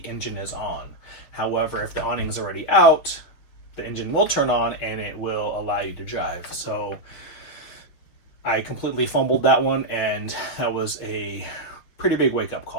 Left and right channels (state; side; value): late; right; 6.4 ms